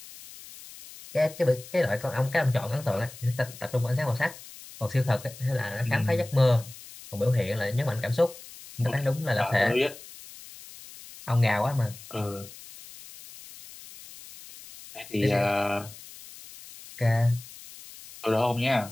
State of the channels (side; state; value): left; noise; hiss, 17 dB below the sound